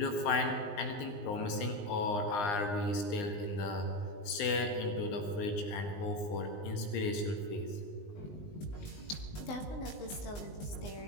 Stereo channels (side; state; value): right; late; 19 ms